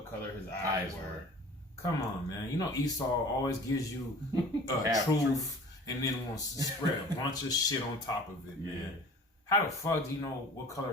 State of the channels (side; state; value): both; normal; correlation 0.45